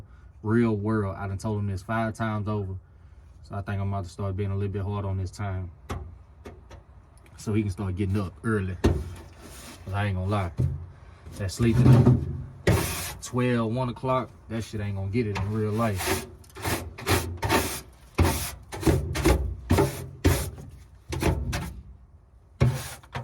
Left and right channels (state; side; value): identical; both; correlation 1.00